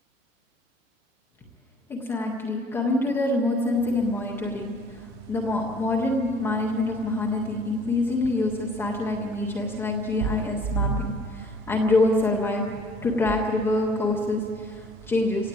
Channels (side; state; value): both; normal; correlation 0.55